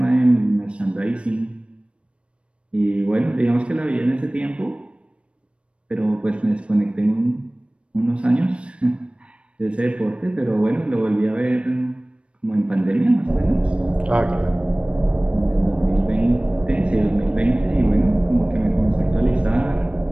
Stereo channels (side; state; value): left; late; 0.059 ms